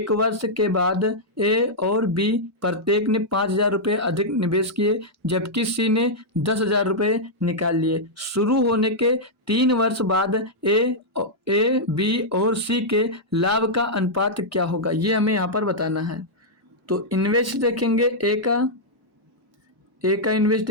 वर्ष के बाद ए और बी प्रत्येक ने 5,000 रुपये अधिक निवेश किए, जबकि सी ने 10,000 रुपये निकाल लिए। शुरू होने के 3 वर्ष बाद ए, बी और सी के लाभ का अनुपात क्या होगा, ये हमें यहाँ पर बताना है। तो इन्वेस्ट देखेंगे ए का इन्वेस्ट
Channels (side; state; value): both; normal; correlation -0.06